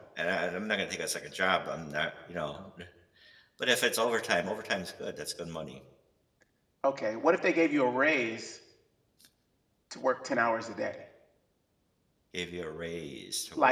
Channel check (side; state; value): both; identical; correlation 1.00